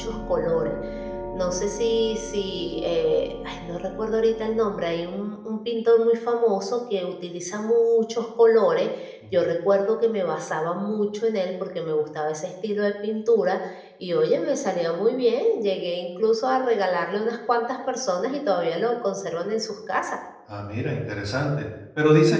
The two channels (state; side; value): identical; both; correlation 1.00